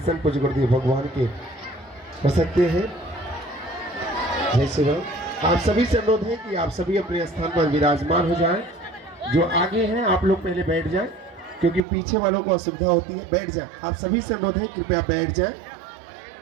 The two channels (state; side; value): drops out; left; at 11.8 s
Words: पूज्य गुरुदेव भगवान के हो सकते हैं। जय श्री राम। आप सभी से अनुरोध है कि आप सभी अपने स्थान पर विराजमान हो जाएं। जो आगे हैं आप लोग पहले बैठ जाएं, क्योंकि पीछे वालों को असुविधा होती है। बैठ जाएं। आप सभी से अनुरोध है, कृपया बैठ जाएं।